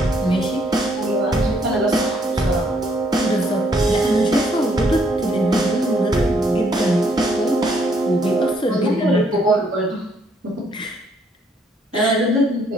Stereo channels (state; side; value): normal; both; correlation 0.69